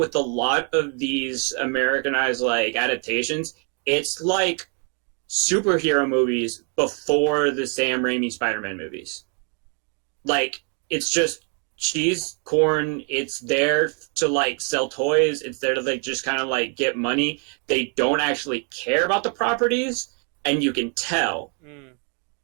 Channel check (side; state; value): left; quieter; 38.7 dB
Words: a lot of these Americanized adaptations, it's superhero movies before the Sam Raimi Spider-Man movies. It's just cheese, corn. It's there to sell toys. It's there to just kind of get money. They don't actually care about the properties, and you can tell.